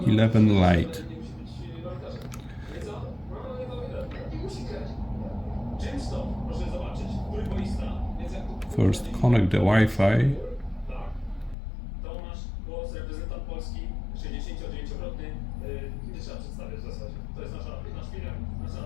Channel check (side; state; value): right; drops out; at 11.6 s